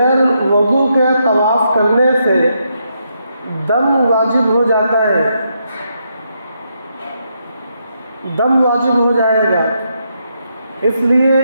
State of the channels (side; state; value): both; inverted; correlation -0.79